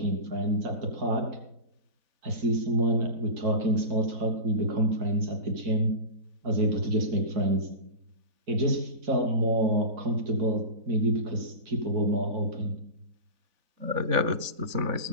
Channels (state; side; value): late; left; 4.0 ms